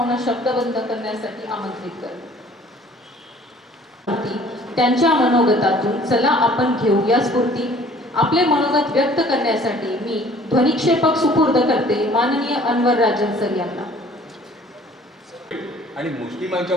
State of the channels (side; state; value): both; normal; correlation 0.53